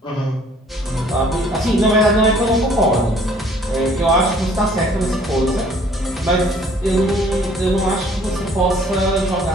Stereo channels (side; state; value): both; normal; correlation 0.57